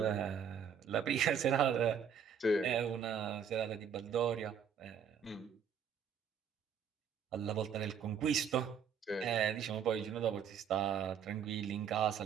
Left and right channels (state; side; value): quieter; left; 7.4 dB